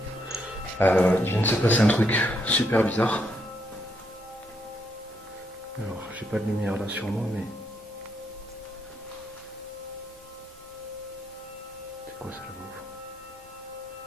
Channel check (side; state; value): both; normal; correlation 0.77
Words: Il vient de se passer un truc super bizarre. Alors, j'ai pas de lumière là sur moi, mais... C'est quoi ça là-bas?